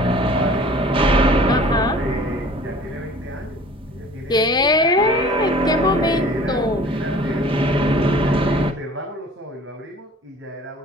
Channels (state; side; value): normal; both; correlation 0.48